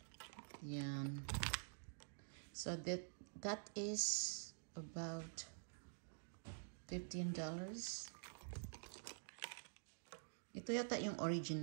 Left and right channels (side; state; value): left; silent; digital silence